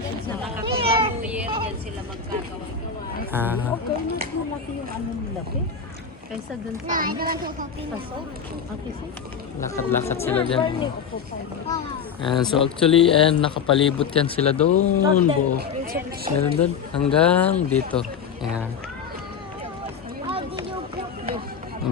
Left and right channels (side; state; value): right; quieter; 6.6 dB